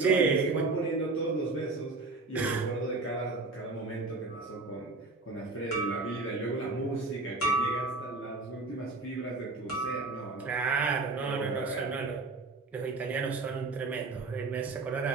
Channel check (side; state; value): left; quieter; 3.6 dB